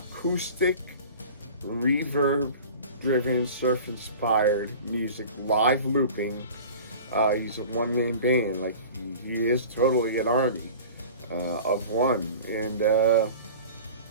reverb-driven, surf-inspired music, live looping. He's a one-man band. Like he is totally an army of one, and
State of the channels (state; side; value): inverted; both; correlation -0.40